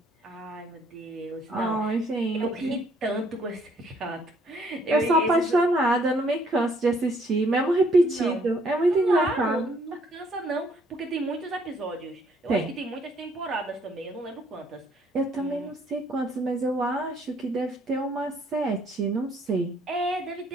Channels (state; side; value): normal; both; correlation 0.65